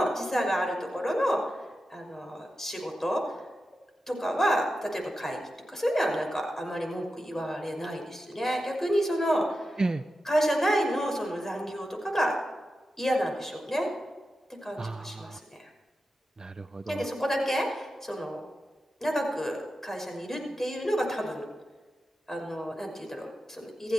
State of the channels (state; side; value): normal; both; correlation 0.91